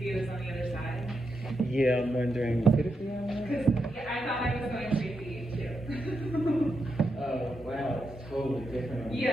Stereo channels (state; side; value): normal; both; correlation 0.85